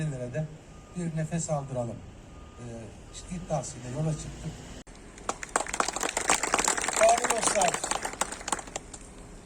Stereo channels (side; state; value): both; identical; correlation 1.00